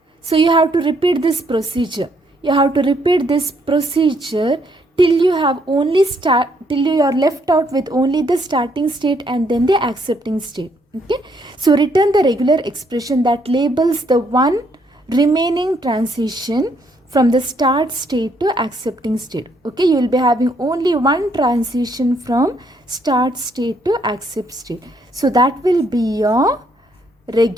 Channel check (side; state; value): both; normal; correlation 0.71